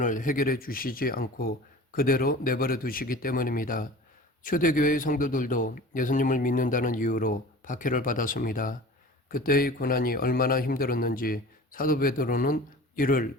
해결해 주시지 않고 그대로 내버려 두시기 때문입니다. 초대교회의 성도들도 예수님을 믿는다는 이유로 박해를 받았습니다. 그때의 고난이 얼마나 힘들었는지 사도 베드로는 이를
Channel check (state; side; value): normal; both; correlation 0.39